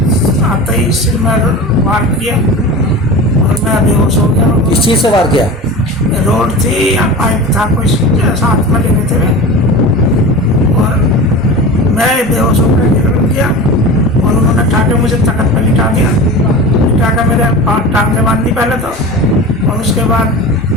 आते ही सिर में वार किया और मैं बेहोश हो गया। किस चीज़ से वार किया? रोड थी या पाइप था, कुछ साथ में लेने थे और मैं बेहोश होकर गिर गया और उन्होंने ठाके मुझे तखत पर लिटा दिया। लिटा कर मेरे टांग से बांध दी पहले तो, और उसके बाद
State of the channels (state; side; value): normal; both; correlation 0.32